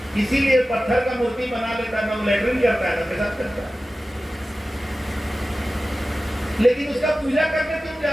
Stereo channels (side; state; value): both; normal; correlation 0.95